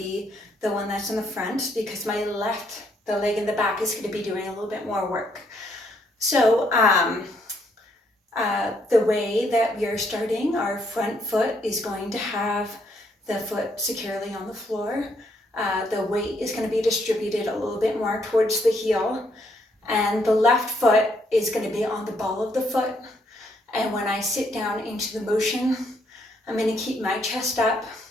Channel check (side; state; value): both; normal; correlation 0.72